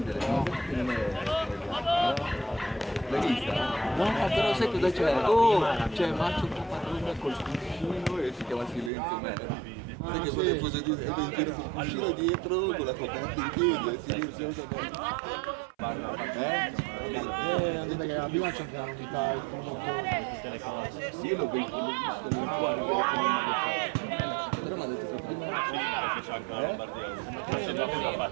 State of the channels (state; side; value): drops out; left; at 8.9 s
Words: no? L'hai vista? No, però sai cosa c'è? Oh, c'è Macio Caparrone col cuscino e si chiama Silenzio Man. Sai che vuole fosse di in giro col cuscino dietro, con la coperta in piedi, è silenzioso. Perché la prima c'è una unità il Sì, io l'ho visto nel cuore, però mi ha detto che prima... C'è anche la Lombardia.